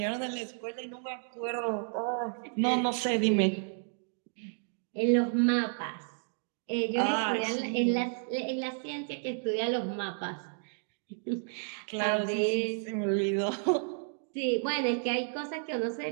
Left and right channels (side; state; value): left; silent; 57 dB below the other